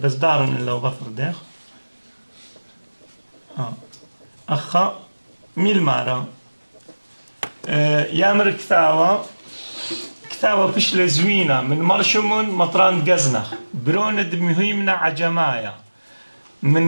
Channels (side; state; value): both; inverted; correlation -1.00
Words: دارن إلا وبطر داخ أخا ميل مارا يامر كتاوة بشلة زوينة من مرشمون مطران قزنخ بروند مهيمنا عجمايا